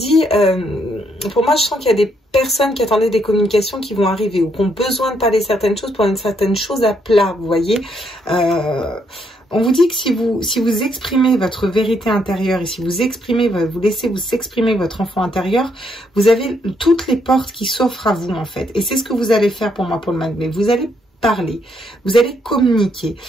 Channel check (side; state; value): both; normal; correlation 0.74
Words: pour moi, je sens qu'il y a des personnes qui attendaient des communications qui vont arriver ou qui ont besoin de parler certaines choses pour une certaine chose à plat, vous voyez. On vous dit que si vous exprimez votre vérité intérieure et si vous exprimez, vous laissez vous exprimer votre enfant intérieur, vous avez toutes les portes qui s'offrent à vous, en fait. Et c'est ce que vous allez faire pour moi, pour le mois de mai. Vous allez parler, vous allez communiquer,